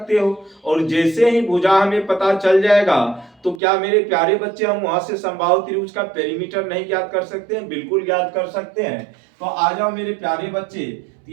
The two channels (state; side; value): drops out; left; at 3.6 s